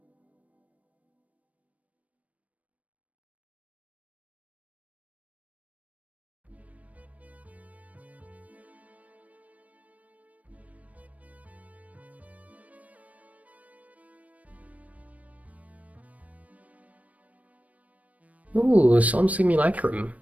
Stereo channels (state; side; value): late; left; 0.069 ms